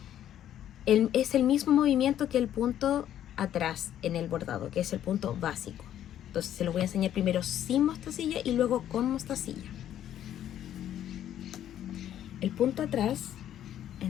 es el mismo movimiento que el punto atrás en el bordado, que es el punto básico. Entonces se los voy a enseñar primero sin mostacilla y luego con mostacilla. El punto atrás,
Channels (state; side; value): quieter; right; 11.1 dB